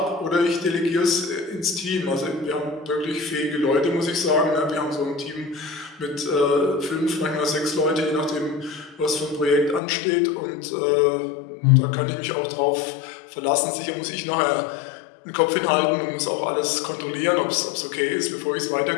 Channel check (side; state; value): right; drops out; at 9.8 s